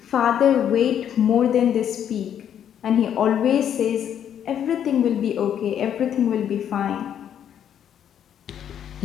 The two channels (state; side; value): quieter; right; 9.4 dB